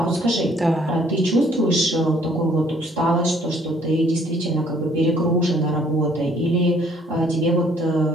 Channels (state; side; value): normal; both; correlation 0.61